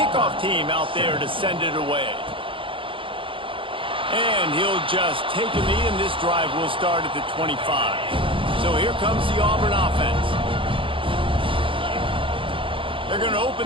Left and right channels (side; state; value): left; late; 0.25 ms